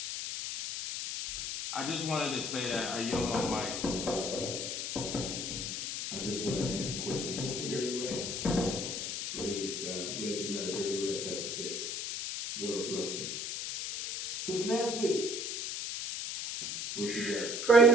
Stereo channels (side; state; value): left; noise; hiss, 4 dB below the sound